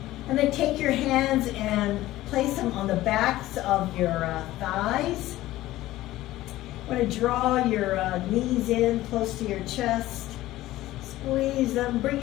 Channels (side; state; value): right; quieter; 16.0 dB